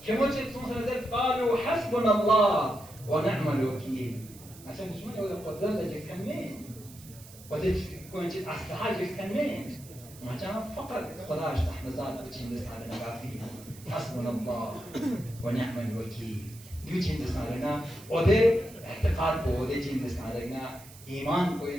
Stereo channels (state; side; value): noise; right; hiss, 19 dB below the sound